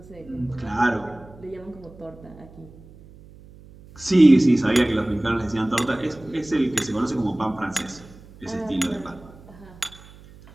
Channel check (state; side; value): noise; right; hum, 21 dB below the sound